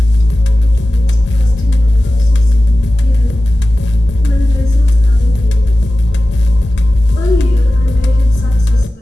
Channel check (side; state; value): both; normal; correlation 0.95